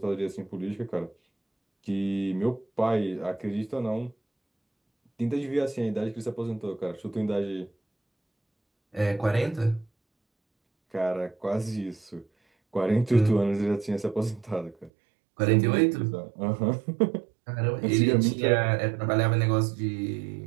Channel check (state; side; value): drops out; left; at 14.9 s